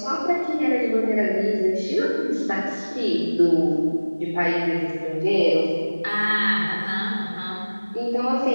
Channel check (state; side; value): inverted; both; correlation -1.00